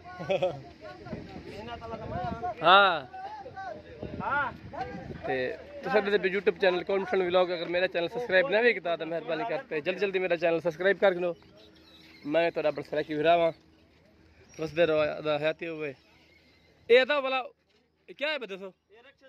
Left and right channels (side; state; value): both; identical; correlation 1.00